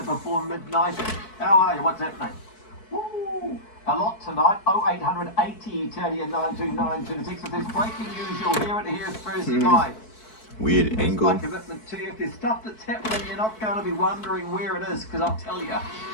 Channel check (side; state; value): right; late; 4.6 ms